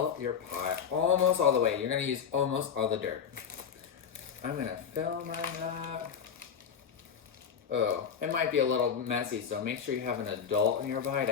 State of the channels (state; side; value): quieter; right; 7.4 dB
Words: your pot almost all the way. You're gonna use almost all the dirt. I'm gonna fill mine up. Oh, it might be a little messy, so make sure you have an adult nearby